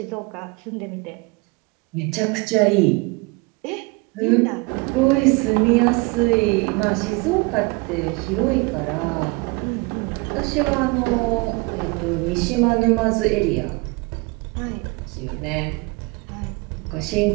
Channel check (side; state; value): left; quieter; 27.0 dB